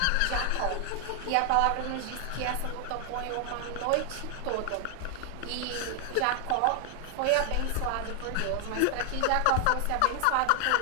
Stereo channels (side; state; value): both; different; correlation 0.00